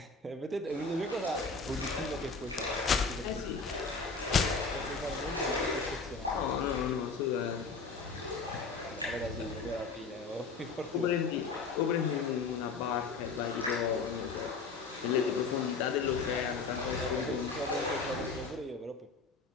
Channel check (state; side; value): quieter; right; 4.5 dB